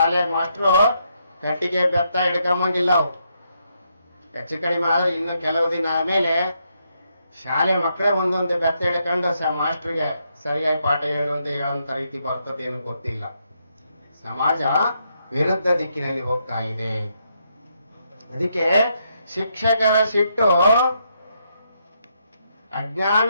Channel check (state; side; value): inverted; both; correlation -0.78